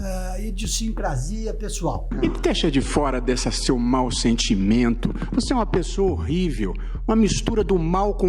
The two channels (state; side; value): identical; both; correlation 1.00